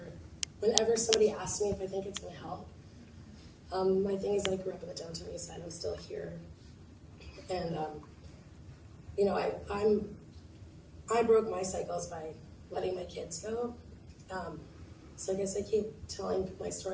Whenever somebody asks me if I think it's going to help, my thing is I grew up in the downtown east side. I'm still here, and I broke my cycles by letting my kids go. So I guess I keep telling my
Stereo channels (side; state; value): both; identical; correlation 1.00